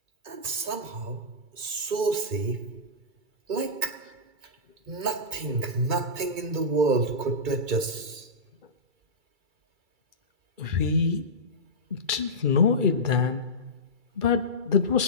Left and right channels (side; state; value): left; late; 2.3 ms